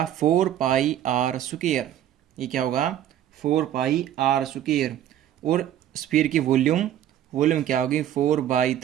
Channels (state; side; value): quieter; left; 11.4 dB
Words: 4πr²। ये क्या होगा 4πr²। और स्फीयर की वॉल्यूम क्या होगी